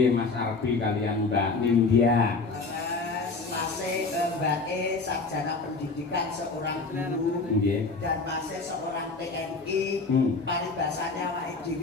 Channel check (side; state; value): right; quieter; 4.0 dB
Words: Mas Arbi kalian Mbak Nindya. Masih Mbak E sarjana pendidikan seorang guru Nggih. dan masih seorang TNI. Paribasane awake